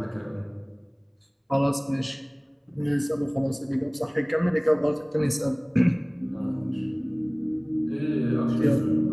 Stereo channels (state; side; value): identical; both; correlation 1.00